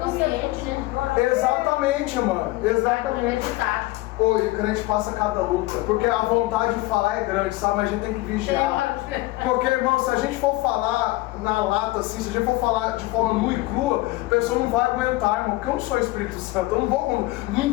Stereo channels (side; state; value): right; quieter; 19.7 dB